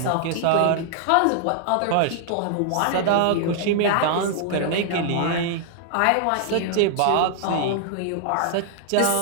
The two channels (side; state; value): both; different; correlation -0.01